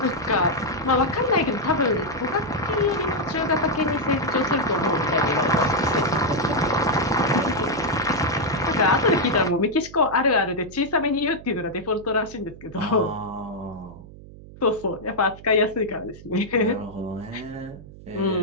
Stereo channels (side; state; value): right; noise; hum, 18 dB below the sound